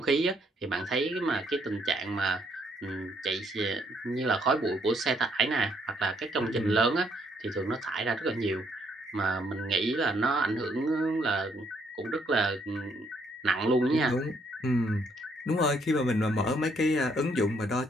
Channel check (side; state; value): both; normal; correlation 0.70